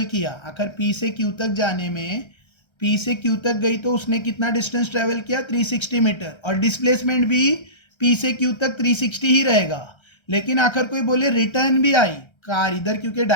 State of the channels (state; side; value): late; right; 1.3 ms